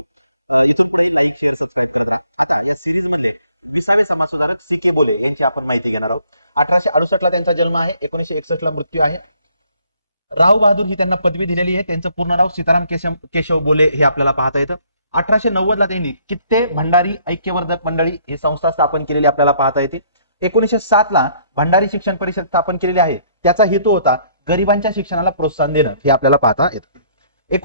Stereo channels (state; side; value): inverted; both; correlation -0.65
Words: इथून पुढे लाईक, शेअर, सबस्क्राईब करत राहा. आता या सिरीज मधले 20वे समाज सुधारक सी.के. बोले यांची आपण माहिती घेणार आहोत. 1868 ला त्यांचा जन्म आहे, 1961 ला मृत्यू आहे. राव बहादूर ही त्यांना पदवी दिलेली आहे. त्यांचं पूर्ण नाव सीताराम केशव बोले हे आपल्याला पाहता येतं. 1890 ला त्यांनी कित्ते भंडारी ऐक्यवर्धक मंडळी ही संस्था स्थापन केलेली आपल्याला पाहता येते. 1907 ला भंडारी शिक्षण परिषद स्थापन केलेली आहे. त्याचा हेतू होता गरिबांच्या शिक्षणाला प्रोत्साहन देणं, हे आपल्याला पाहता येतं.